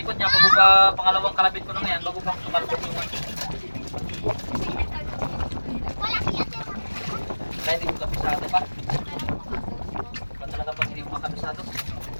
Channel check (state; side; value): inverted; both; correlation -1.00